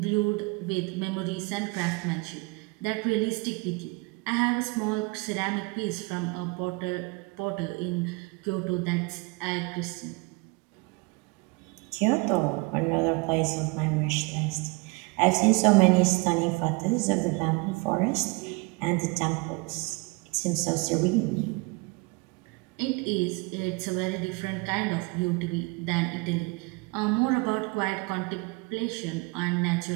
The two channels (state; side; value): quieter; left; 27.2 dB